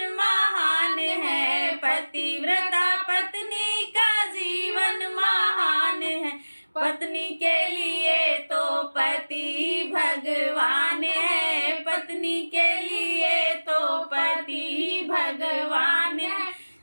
महान है, पतिव्रता पत्नी का जीवन महान है। पत्नी के लिए तो पति भगवान है, पत्नी के लिए तो पति भगवान है।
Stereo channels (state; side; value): inverted; both; correlation -1.00